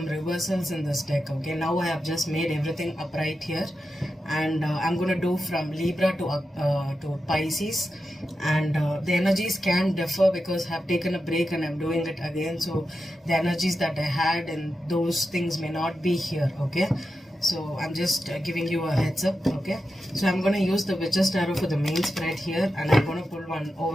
reversals in this deck. Okay, now I have just made everything upright here, and I'm gonna do from Libra to Pisces, and the energies can differ because I have taken a break and I'm doing it again. So the energies that I had and those things may not be here. Okay. So I'm just giving you a heads up. Okay, so I'm going to use the Witch's Tarot for the main spread here, and I'm going to pull one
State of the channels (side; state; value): both; normal; correlation 0.90